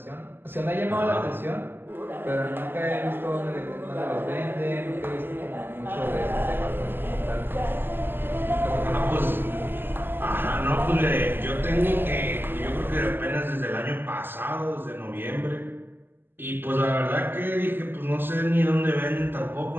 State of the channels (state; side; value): late; left; 0.098 ms